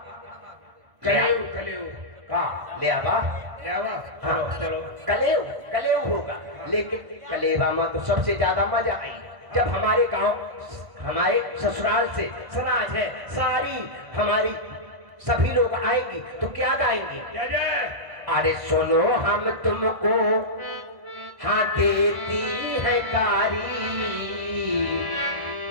कलेव, कलेव का लेवा, लेवा। हाँ। चलो कलेव, कलेव होगा। लेकिन कलेवा में तो सबसे ज्यादा मजा आई जब हमारे गांव, हमारे ससुराल से समाज है सारी, हमारी सभी लोग आएंगी तो क्या गाएंगी? अरे सुनो हम तुमको हाँ देती है गारी,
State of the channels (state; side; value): late; left; 1.5 ms